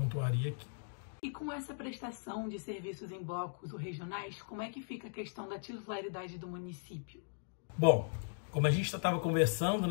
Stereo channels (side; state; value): right; silent; digital silence